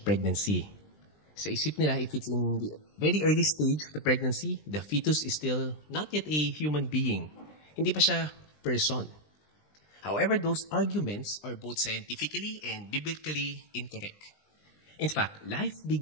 pregnancy. Sa isip nila, if it's in the very early stage of the pregnancy, the fetus is still not yet a human being. Hindi pa siya person. However, those arguments are both scientifically and biblically incorrect. In fact, life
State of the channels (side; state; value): right; late; 20 ms